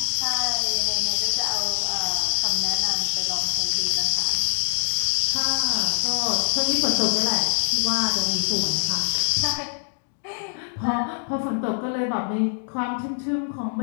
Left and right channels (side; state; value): right; silent; digital silence